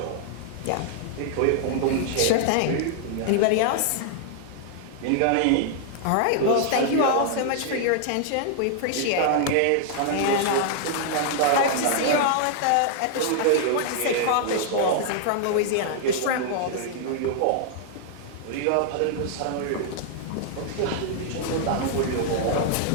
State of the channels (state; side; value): different; both; correlation -0.01